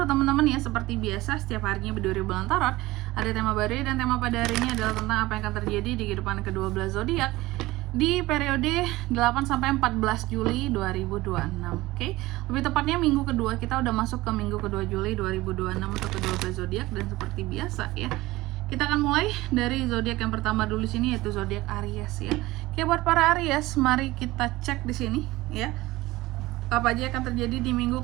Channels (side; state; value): left; quieter; 18.9 dB